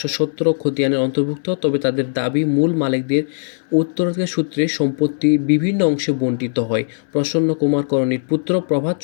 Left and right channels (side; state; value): right; silent; 62 dB below the other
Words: খতিয়ানের অন্তর্ভুক্ত, তবে তাদের দাবি মূল মালিকদের উত্তরাধিকার সূত্রে সম্পত্তি বিভিন্ন অংশে বণ্টিত হয়। প্রসন্ন কুমার করণীর পুত্র